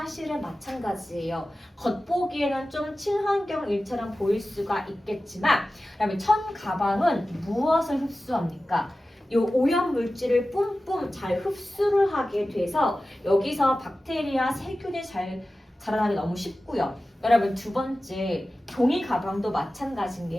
마찬가지예요. 겉보기에는 좀 친환경 일처럼 보일 수가 있겠지만 그다음에 천 가방은 무엇을 흡수합니까? 이 오염 물질을 뿜뿜 잘 흡수를 하게 돼서 여기서 박테리아, 세균이 잘 자라나기 너무 쉽고요. 여러분 두 번째 종이 가방도 마찬가지인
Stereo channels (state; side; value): normal; both; correlation 0.95